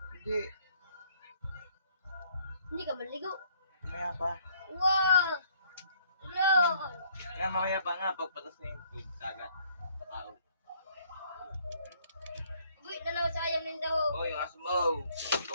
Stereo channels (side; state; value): both; inverted; correlation -0.63